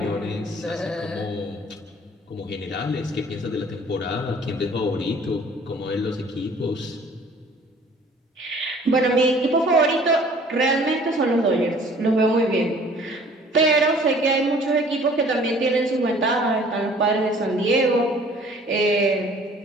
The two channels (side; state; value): both; normal; correlation 0.53